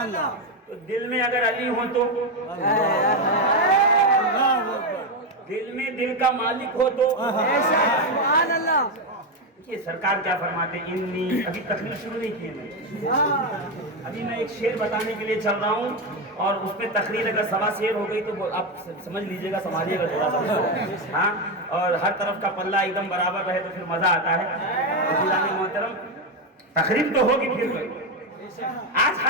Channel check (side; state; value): both; normal; correlation 0.09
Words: تو دل میں اگر علی ہو تو, دل میں دل کا مالک ہو تو, سبحان اللہ. یہ سرکار کیا فرماتے ہیں, ابھی تقریر شروع نہیں کی میں, ابھی میں ایک شعر بتانے کے لیے چل رہا ہوں, اور اس میں تقریر اگر سوا شعر ہو گئی تو آپ سمجھ لیجئے گا, سمجھیے گا تھوڑا سا, ہاں, اور ہر طرف کا پلہ ایک دم برابر رہے تو پھر مزہ آتا ہے. عزیزان محترم, تقریر تو ہوگی پھر کوئی. آج